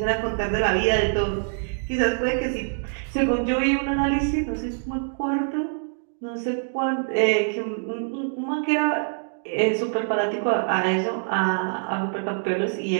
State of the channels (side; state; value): left; silent; digital silence